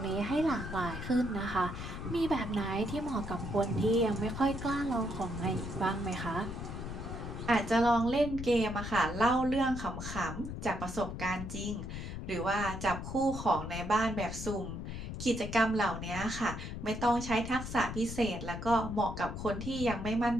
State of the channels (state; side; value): noise; left; rumble, 7 dB below the sound